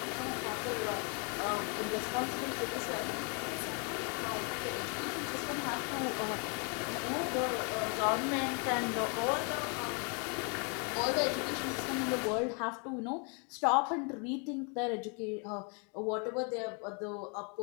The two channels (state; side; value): quieter; right; 36.8 dB